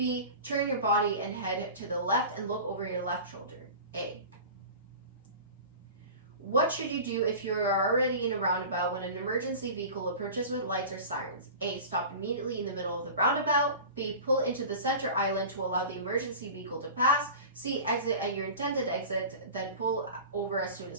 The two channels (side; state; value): both; inverted; correlation -0.35